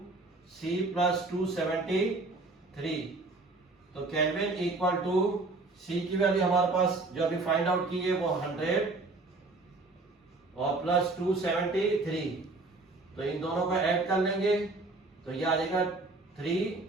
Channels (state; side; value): quieter; left; 3.3 dB